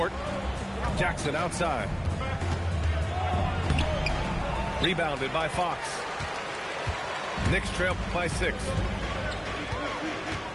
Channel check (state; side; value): identical; both; correlation 1.00